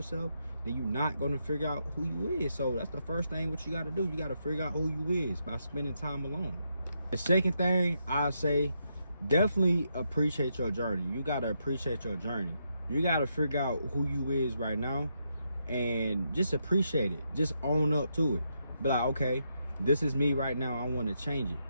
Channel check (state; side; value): inverted; both; correlation -0.80